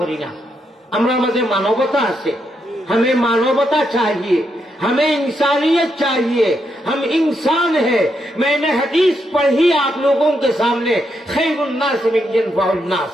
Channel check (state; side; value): normal; both; correlation 0.80